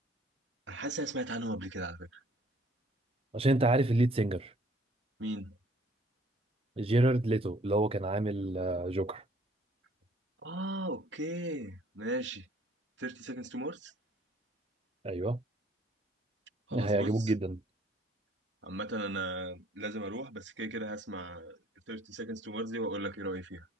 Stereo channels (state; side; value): normal; both; correlation 0.59